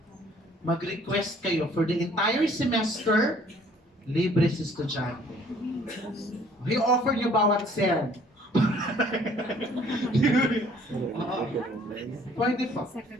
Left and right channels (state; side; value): normal; both; correlation 0.57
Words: Mag-request kayo for the entire semester, libre sa estudyante. I-offer nyo bawat SEM. Pwede pa.